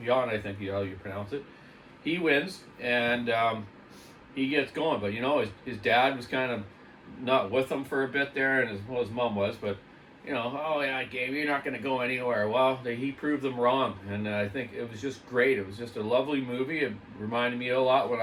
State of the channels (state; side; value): identical; both; correlation 1.00